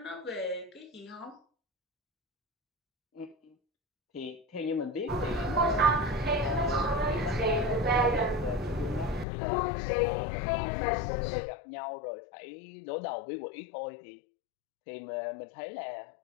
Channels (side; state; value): right; drops out; at 9.2 s